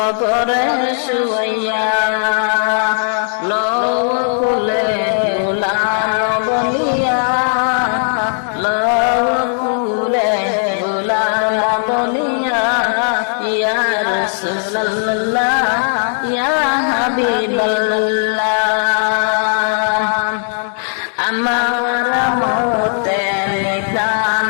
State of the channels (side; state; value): right; silent; digital silence